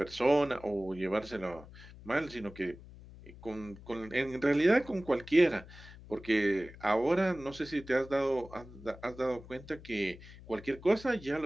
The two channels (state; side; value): noise; left; hum, 18 dB below the sound